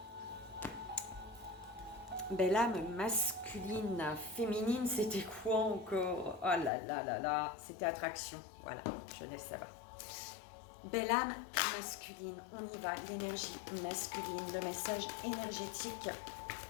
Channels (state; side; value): drops out; right; at 6.7 s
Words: Belle âme masculine, féminine, c'était quoi encore? Oh là là là là, c'était attraction. Voilà, je laisse ça va. Belle âme masculine, on y va. L'énergie masculine, le message énergétique